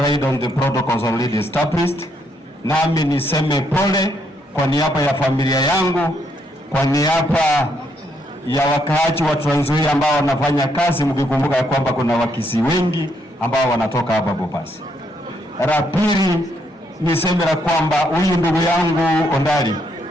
on the protocols already established. Nami niseme pole kwa niaba ya familia yangu, kwa niaba ya wakaaji wa Trans Nzoia ambao wanafanya kazi, mkikumbuka ya kwamba kuna Wakisii wengi ambao wanatoka hapa Bobasi. La pili niseme la kwamba huyu ndugu yangu Ondari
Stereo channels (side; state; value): both; normal; correlation 0.74